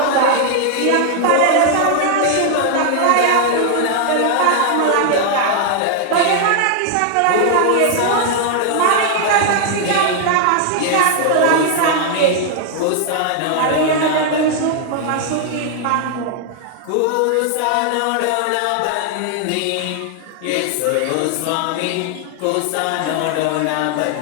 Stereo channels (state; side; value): different; both; correlation 0.00